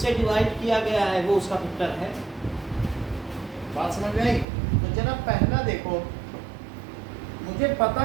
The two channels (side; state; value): left; drops out; at 4.5 s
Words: डिवाइड किया गया है वो उसका फैक्टर है। बात समझ में आई? तो जरा पहला देखो, मुझे पता